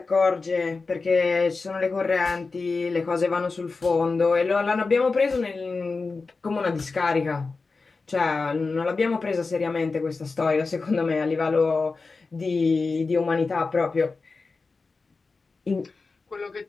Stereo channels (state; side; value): quieter; right; 4.1 dB